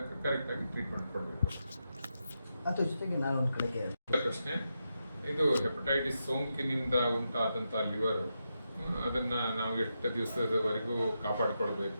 ಕರೆಕ್ಟ್ ಆಗಿ ಟ್ರೀಟ್ಮೆಂಟ್ ಕೊಡಬೇಕು. ಅದ್ರ ಜೊತೆಗೆ ನಾನು ಒಂದು ಕಡೆಗೆ ಪ್ರಶ್ನೆ, ಇದು ಹೆಪಟೈಟಿಸ್ ಸೋಂಕಿನಿಂದ ಉಂಟಾದಂಥ ಲಿವರ್ ಅದನ್ನ ನಾವು ಎಷ್ಟು ದಿವಸದವರೆಗೂ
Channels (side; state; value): both; inverted; correlation -0.86